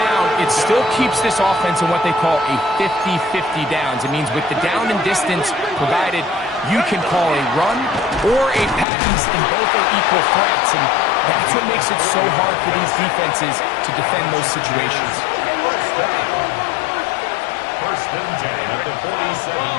it still keeps this offense in what they call a 50-50 downs. It means with the down and distance provided, you can call a run or a pass, and both are equal threats. And that's what makes it so hard for these defenses to defend those situations. First and 10 at the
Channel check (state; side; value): drops out; right; at 8.8 s